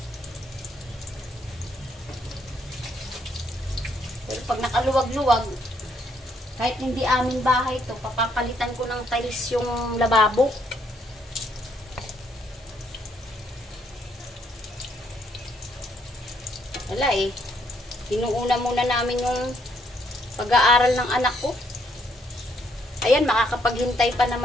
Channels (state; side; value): normal; both; correlation 0.71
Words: Pero pag nakaluwag-luwag, kahit hindi aming bahay to, papapalitan ko ng tiles yung lababo. Wala eh. Inuuna muna namin yung pag-aaral ng anak ko. Ayan, makakapaghintay pa